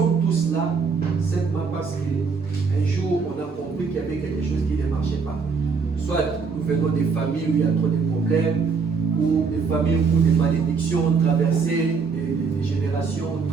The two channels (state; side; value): quieter; left; 5.1 dB